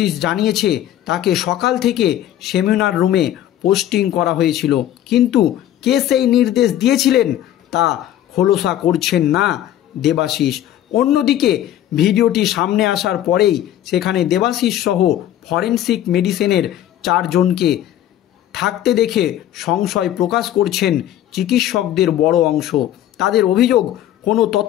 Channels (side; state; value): right; quieter; 12.2 dB